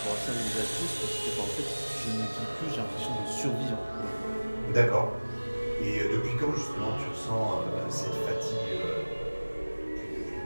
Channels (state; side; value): inverted; both; correlation -1.00